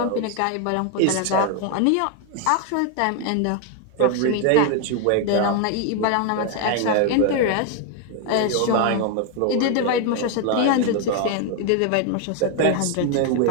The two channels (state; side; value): different; both; correlation 0.01